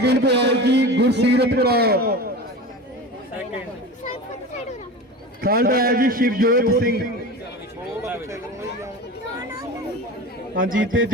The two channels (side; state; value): both; normal; correlation 0.31